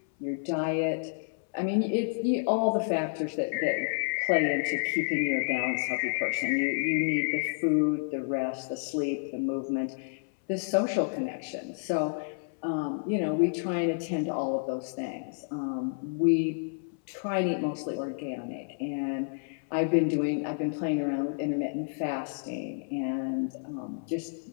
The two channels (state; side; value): silent; right; 58 dB below the other